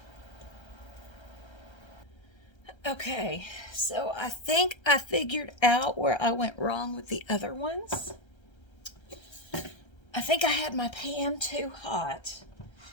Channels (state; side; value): late; right; 1.3 ms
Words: Okay, so I think I figured out where I went wrong with the other ones. I think I had my pan too hot.